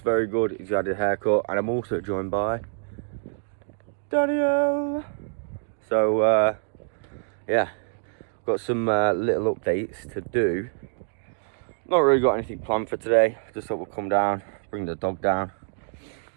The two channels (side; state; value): left; silent; digital silence